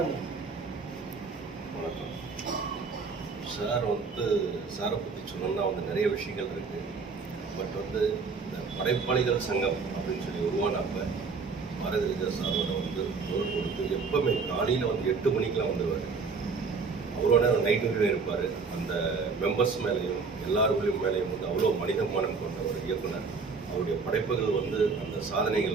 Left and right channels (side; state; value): left; quieter; 4.8 dB